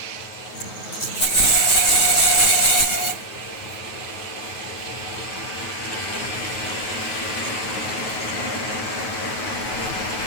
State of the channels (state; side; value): late; right; 9.3 ms